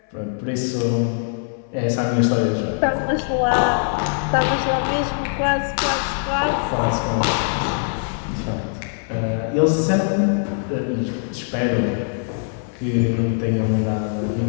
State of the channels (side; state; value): right; silent; 64 dB below the other